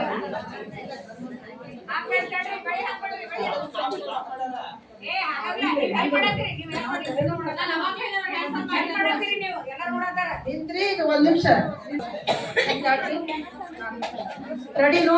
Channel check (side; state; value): both; identical; correlation 1.00